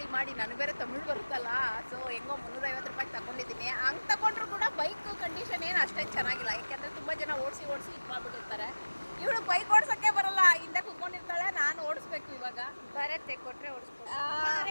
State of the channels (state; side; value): inverted; both; correlation -1.00